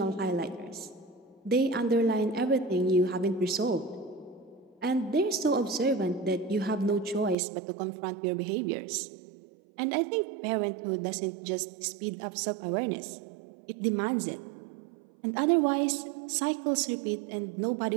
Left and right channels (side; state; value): left; drops out; at 7.4 s